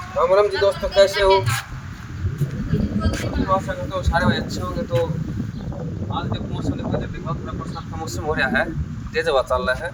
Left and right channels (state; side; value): identical; both; correlation 1.00